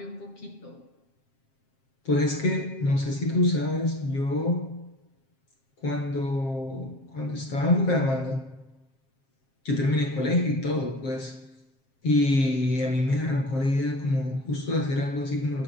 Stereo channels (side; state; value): right; late; 7.5 ms